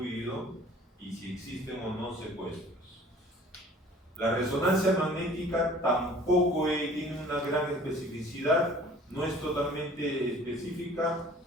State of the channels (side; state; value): both; normal; correlation 0.50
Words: y si existen o no secuestros. La resonancia magnética tampoco tiene una gran especificidad, no es totalmente específica,